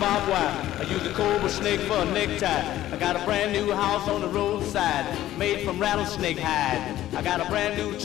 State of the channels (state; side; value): quieter; right; 13.7 dB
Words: wire. I use a cobra snake for a necktie. I got a brand new house on the roadside, made from rattlesnake hide. I got a brand new